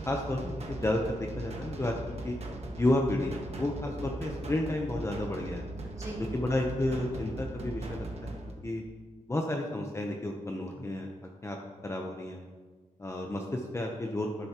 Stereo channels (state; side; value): normal; both; correlation 0.84